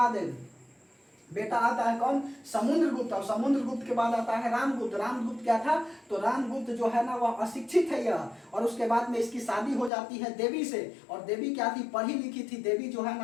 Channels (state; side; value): drops out; right; at 9.9 s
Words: बेटा आता है कौन? समुद्रगुप्त। और समुद्रगुप्त के बाद आता है रामगुप्त। रामगुप्त क्या था? तो रामगुप्त जो है ना वह अशिक्षित है यह। और उसके बाद में इसकी शादी हो जाती है देवी से। और देवी क्या थी? पढ़ी लिखी थी। देवी जो है